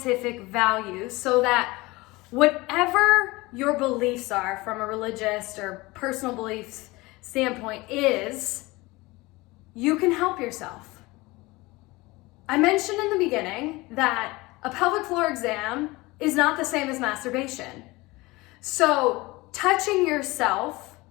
value, so that whatever your beliefs are from a religious or personal beliefs standpoint is, you can help yourself. I mentioned in the beginning that a pelvic floor exam is not the same as masturbation. So touching yourself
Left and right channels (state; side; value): quieter; right; 21.8 dB